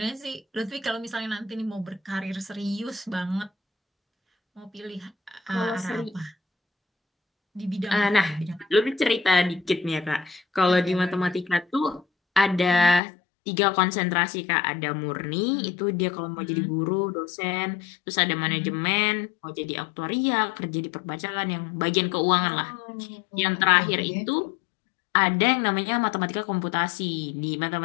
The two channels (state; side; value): drops out; right; at 13.0 s